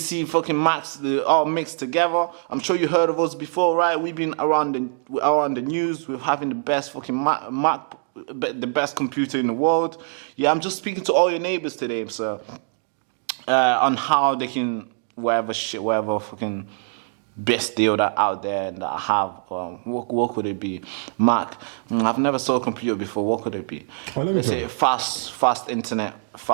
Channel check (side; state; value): left; silent; digital silence